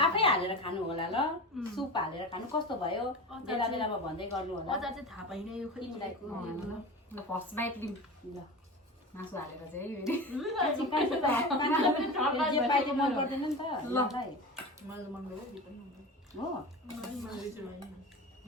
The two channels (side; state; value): both; normal; correlation 0.29